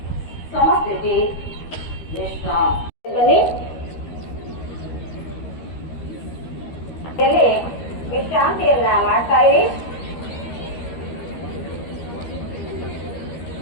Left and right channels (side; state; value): right; late; 13 ms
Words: ಸಮಸ್ಥಿತಿ. ವಿಶ್ರಾಂತಿ. ವಿಶ್ರಾಂತಿಯನ್ನ ಮಾಡ್ತಾ ಇರಿ.